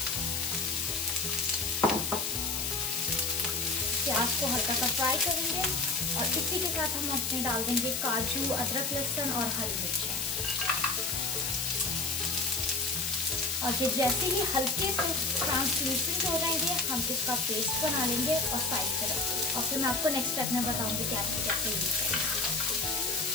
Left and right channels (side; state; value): left; noise; hiss, 1 dB below the sound